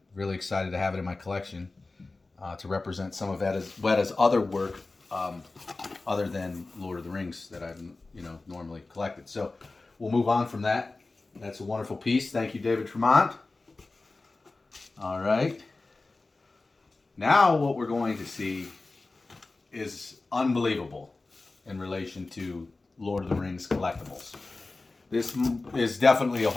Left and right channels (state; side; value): quieter; right; 3.4 dB